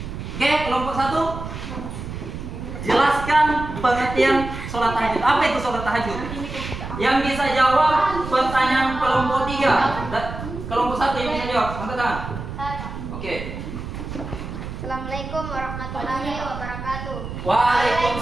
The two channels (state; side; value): noise; right; rumble, 8 dB below the sound